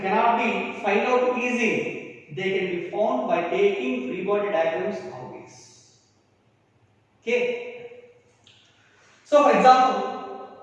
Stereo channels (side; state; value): both; identical; correlation 1.00